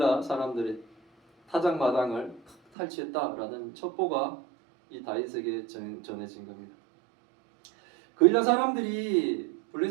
사람들의 타작 마당을 탈취했다라는 첩보가 이 다윗에게 전해진 겁니다. 그일라 사람들이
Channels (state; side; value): drops out; left; at 2.6 s